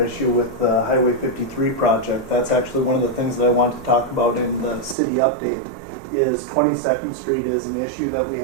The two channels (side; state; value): left; drops out; at 5.0 s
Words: issue with the Highway 53 project. That's actually one of the things that I want to talk about in the city update. Is 22nd Street is an issue that we